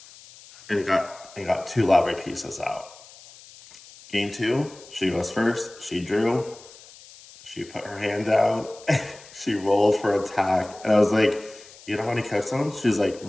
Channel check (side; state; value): left; noise; hiss, 21 dB below the sound